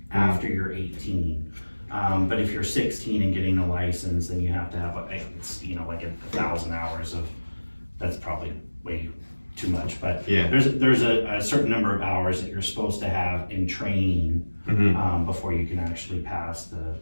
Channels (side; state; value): both; inverted; correlation -1.00